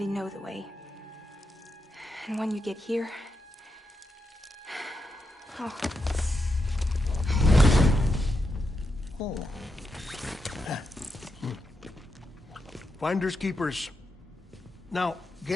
know the way. And when you get here... Oh. Oh. Finders keepers. Now,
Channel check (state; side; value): normal; both; correlation 0.86